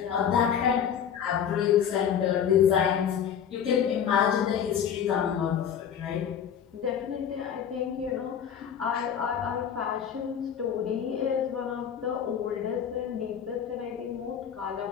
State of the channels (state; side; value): quieter; right; 8.4 dB